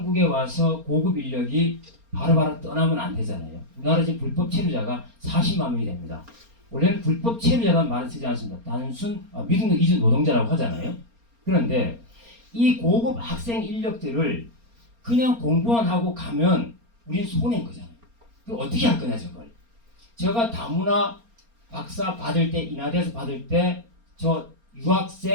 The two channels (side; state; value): left; late; 4.3 ms